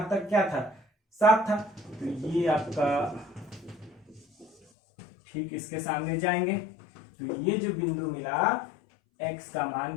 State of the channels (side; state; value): right; drops out; at 4.5 s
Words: तक क्या था, 7 था। तो ये आपका ठीक इसके सामने जाएंगे। तो ये जो बिंदु मिला, x का मान